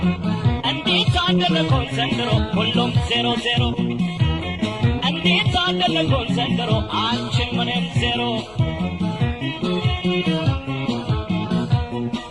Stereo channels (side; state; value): left; noise; rumble, 25 dB below the sound